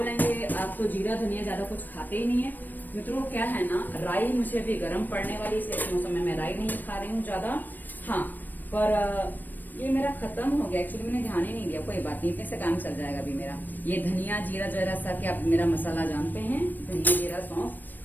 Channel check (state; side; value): late; right; 0.089 ms